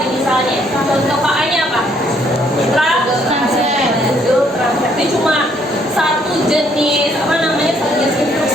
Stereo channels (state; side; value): normal; both; correlation 0.67